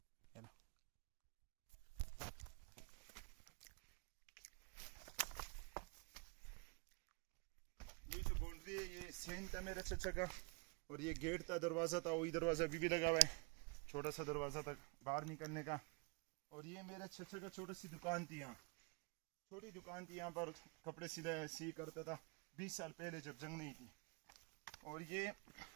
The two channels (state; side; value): quieter; left; 31.2 dB